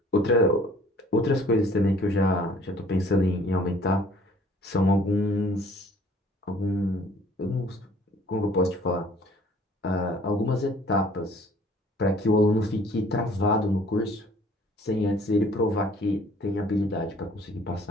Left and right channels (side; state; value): both; normal; correlation 0.55